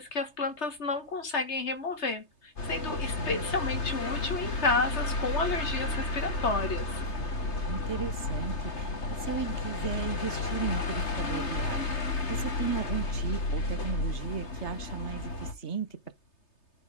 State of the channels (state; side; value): late; right; 3.3 ms